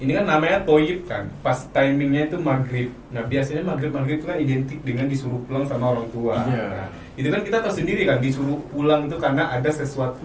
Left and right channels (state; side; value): identical; both; correlation 1.00